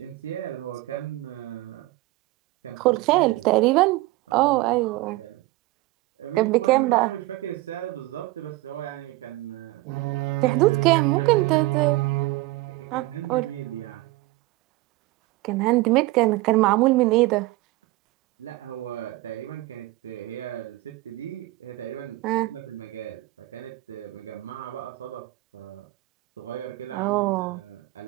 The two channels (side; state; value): left; quieter; 19.3 dB